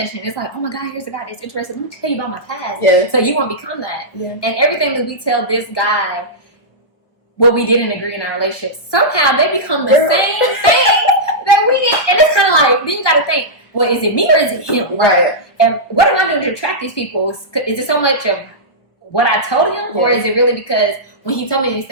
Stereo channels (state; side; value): late; right; 1.0 ms